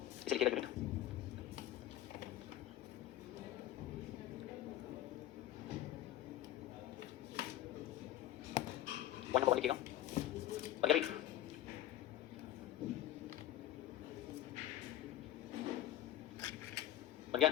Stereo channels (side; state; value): right; quieter; 13.1 dB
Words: इसे लिखिएगा यूनिट। वन नंबर वन लिखिएगा। और क्या भाई? बन गया?